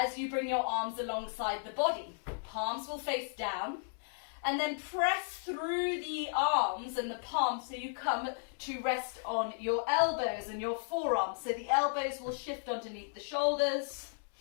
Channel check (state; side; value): silent; right; digital silence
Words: you bring your arms alongside the body. Palms will face down, and then press through the arms and the palms so you come to rest on your elbows and your forearms. So the elbows will shift underneath the shoulders.